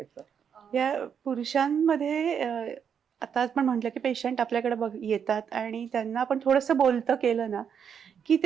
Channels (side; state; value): left; quieter; 7.6 dB